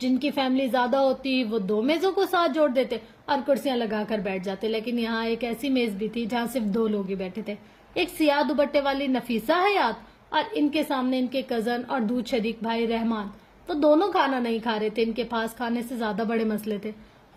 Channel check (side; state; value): both; identical; correlation 1.00